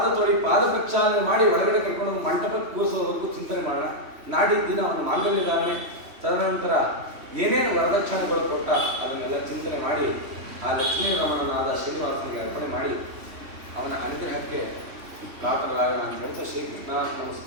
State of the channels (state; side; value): late; left; 3.1 ms